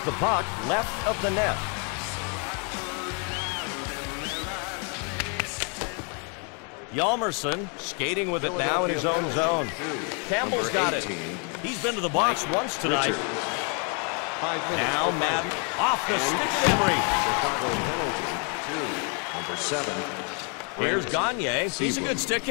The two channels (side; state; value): right; quieter; 37.4 dB